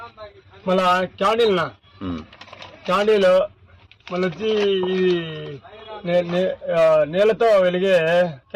మళ్ళా క్యాండిల్నా, క్యాండిల్ మళ్ళీ వచ్చి నీళ్ళతో వెలిగే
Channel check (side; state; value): both; identical; correlation 1.00